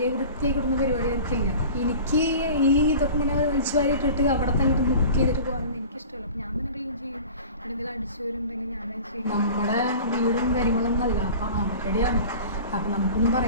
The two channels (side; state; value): both; inverted; correlation -0.40